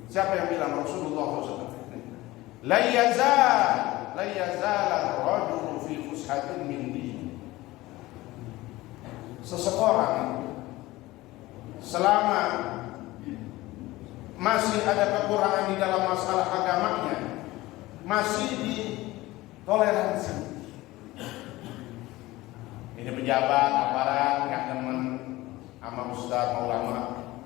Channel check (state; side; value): quieter; right; 18.7 dB